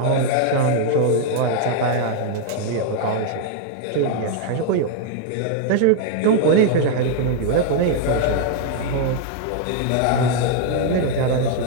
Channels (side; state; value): both; different; correlation 0.00